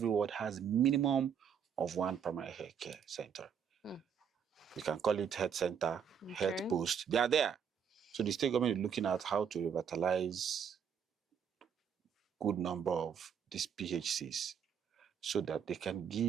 ward, has minimum of one primary healthcare center. You can call it health center, health post. They are there. So the state government is looking at how to revitalize good number of these PHCs so that they can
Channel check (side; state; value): left; quieter; 7.6 dB